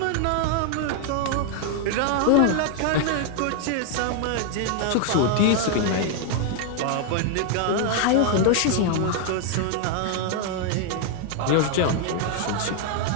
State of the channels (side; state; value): both; different; correlation 0.00